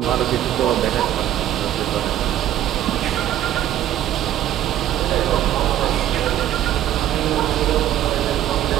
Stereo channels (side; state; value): left; quieter; 12.2 dB